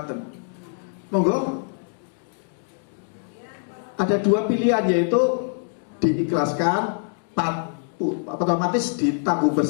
Monggo. Ada dua pilihan, yaitu diikhlaskan, otomatis ditanggung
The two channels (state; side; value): silent; right; digital silence